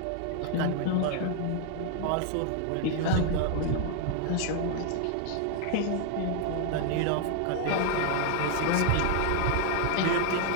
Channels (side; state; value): both; different; correlation 0.00